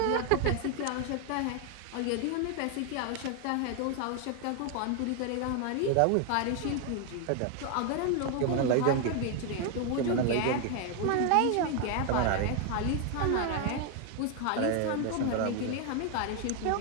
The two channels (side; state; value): both; different; correlation 0.01